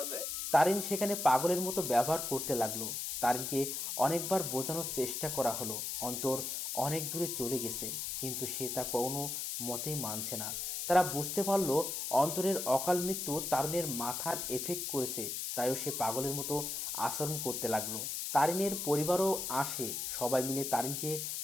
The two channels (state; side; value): noise; left; hiss, 3 dB below the sound